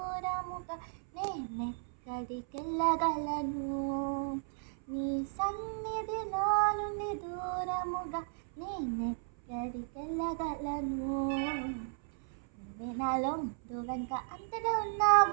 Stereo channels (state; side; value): silent; left; 54 dB below the other